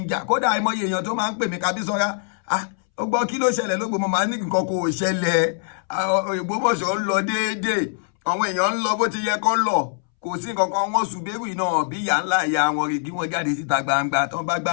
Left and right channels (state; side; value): silent; right; 64 dB below the other